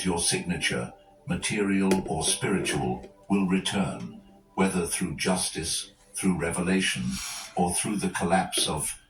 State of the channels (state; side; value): identical; both; correlation 1.00